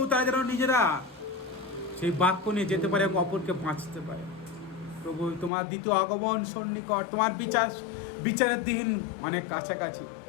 তারা যেন নিজেরা সেই বাক্য নিয়ে যেতে পারে এবং অপরকে বাঁচতে পারে প্রভু। তোমার দ্বিতীয় আগমন সন্নিকট, তোমার বিচারের দিন অনেক কাছাকাছি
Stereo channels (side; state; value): right; drops out; at 5.5 s